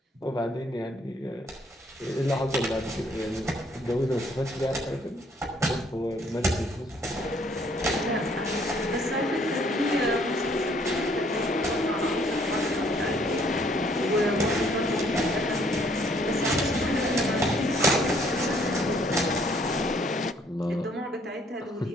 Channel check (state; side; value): normal; both; correlation 0.64